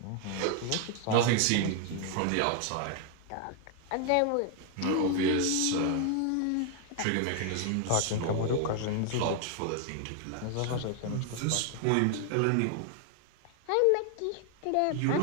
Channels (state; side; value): different; both; correlation 0.00